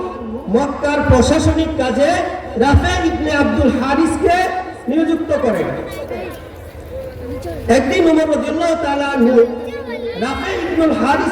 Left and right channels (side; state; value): both; identical; correlation 1.00